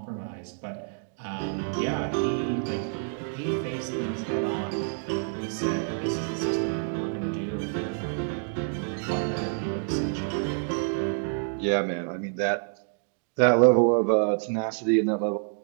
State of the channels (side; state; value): left; silent; 59 dB below the other